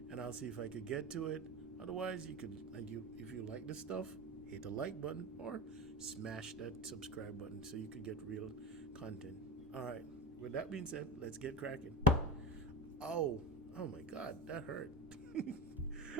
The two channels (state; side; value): normal; both; correlation 0.25